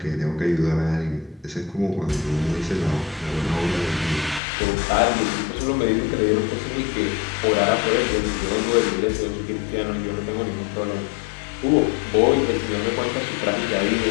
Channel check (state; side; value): drops out; right; at 4.4 s